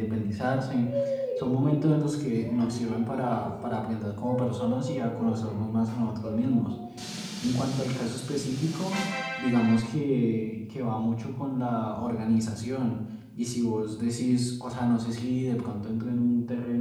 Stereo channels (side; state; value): both; identical; correlation 1.00